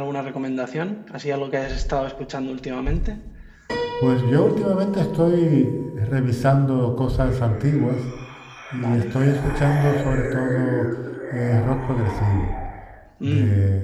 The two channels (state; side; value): identical; both; correlation 1.00